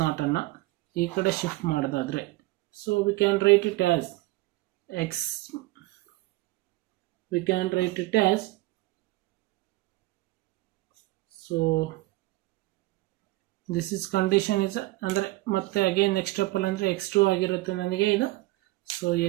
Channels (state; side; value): quieter; left; 19.9 dB